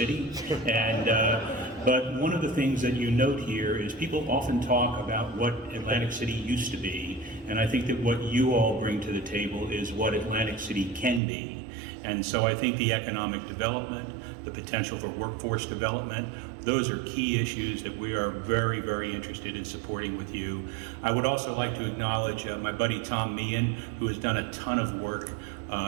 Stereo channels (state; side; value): drops out; left; at 11.2 s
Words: But one of the things that you note here is people often talk about what Atlantic City used to be, and I think that what you all bring to the table is what Atlantic City can be. And so I think the economic development, the potential for workforce development, those are key issues that we are very, very interested in supporting with you. I would also like to acknowledge my buddy Tom Meehan, who has done a ton of work